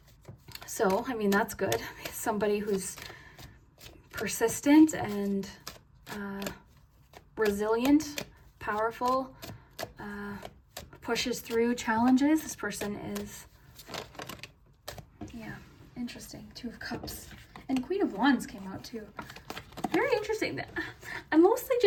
So, I mean, that's good. Somebody who's persistent and resilient, powerful, pushes through challenges. This person is, yeah, interesting. Two of Cups. And Queen of Wands came out too. Very interesting. I'm mostly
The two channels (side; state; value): both; identical; correlation 1.00